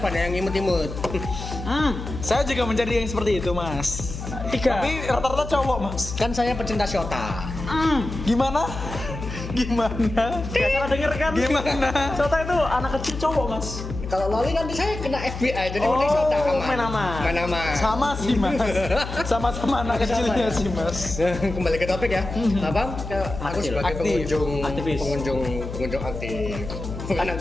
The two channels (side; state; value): left; noise; hum, 8 dB below the sound